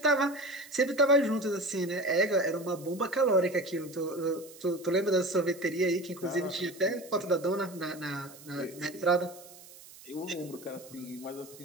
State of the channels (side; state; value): right; noise; hiss, 20 dB below the sound